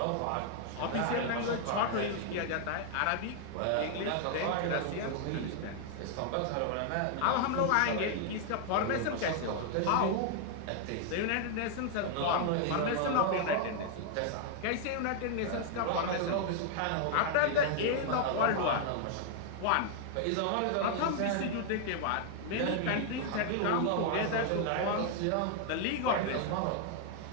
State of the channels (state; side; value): different; both; correlation 0.00